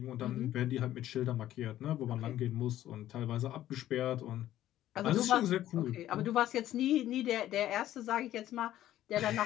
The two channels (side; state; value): right; quieter; 13.1 dB